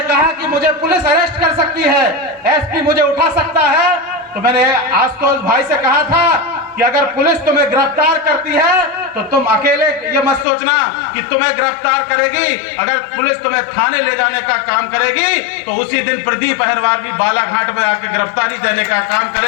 कहा कि मुझे पुलिस अरेस्ट कर सकती है, एसपी मुझे उठा सकता है, तो मैंने आशुतोष भाई से कहा था कि अगर पुलिस तुम्हें गिरफ्तार करती है तो तुम अकेले ये मत सोचना कि तुम्हें गिरफ्तार करेगी। अगर पुलिस तुम्हें थाने ले जाने का काम करेगी तो उसी दिन प्रदीप अहिरवार भी बालाघाट में आके गिरफ्तारी देने का काम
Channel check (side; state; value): right; drops out; at 10.5 s